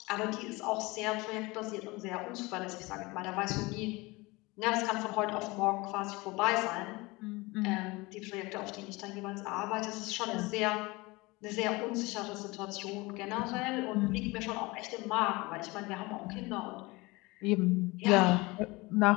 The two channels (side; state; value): right; quieter; 23.3 dB